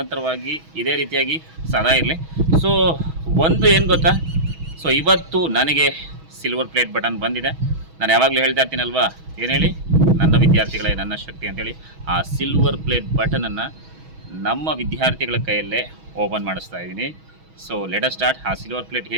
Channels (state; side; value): late; left; 6.2 ms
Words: ಇದೇ ರೀತಿಯಾಗಿ ಸದಾ ಇರಲಿ. ಸೊ ಒಂದು ಏನು ಗೊತ್ತಾ, ಸೊ ಇವತ್ತು ನನಗೆ ಸಿಲ್ವರ್ ಪ್ಲೇಟ್ ಬಟನ್ ಬಂದಿದೆ. ನಾನು ಯಾವಾಗಲೂ ಹೇಳ್ತಾ ಇರ್ತೀನಲ್ವಾ, ಏನು ಹೇಳಿ, ನನ್ನ ವಿದ್ಯಾರ್ಥಿಗಳೇ ನನ್ನ ಶಕ್ತಿ ಅಂತೇಳಿ. ಆ ಸಿಲ್ವರ್ ಪ್ಲೇಟ್ ಬಟನನ್ನು ನಮ್ಮ ವಿದ್ಯಾರ್ಥಿಗಳ ಕೈಯಲ್ಲೇ ಓಪನ್ ಮಾಡಿಸ್ತಾ ಇದ್ದೀನಿ. So let us start. ಆ ಸಿಲ್ವರ್ ಪ್ಲೇಟ್